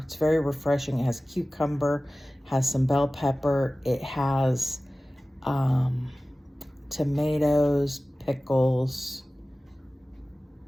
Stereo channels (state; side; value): normal; both; correlation 0.97